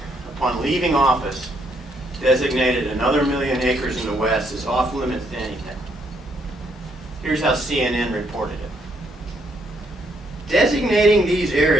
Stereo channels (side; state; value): both; normal; correlation 0.72